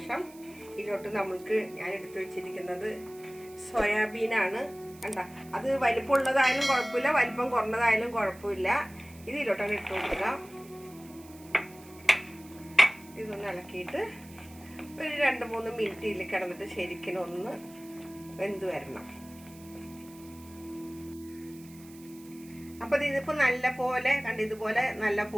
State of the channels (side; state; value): right; noise; hiss, 22 dB below the sound